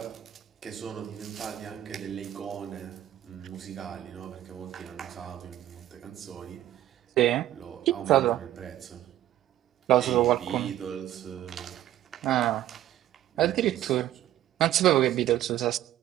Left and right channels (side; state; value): left; quieter; 13.0 dB